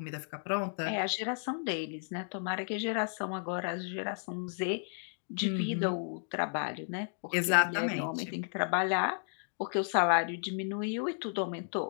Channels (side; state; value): right; silent; digital silence